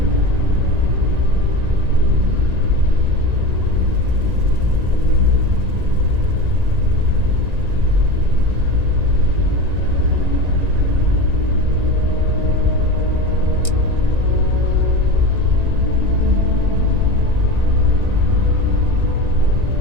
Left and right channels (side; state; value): left; late; 1.9 ms